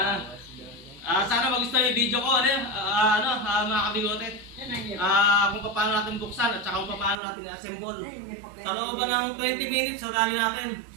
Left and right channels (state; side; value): drops out; left; at 7.2 s